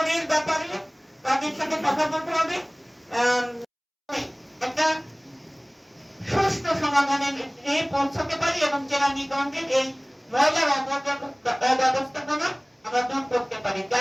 ব্যাপারে তাদের সাথে কথা বলতে হবে, একটা সুষ্ঠু সমাধানে পৌঁছতে পারি এবং কেরানীগঞ্জের এই ময়লার অব্যবস্থাপনা আমরা দূর করতে পারি।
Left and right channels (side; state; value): both; identical; correlation 1.00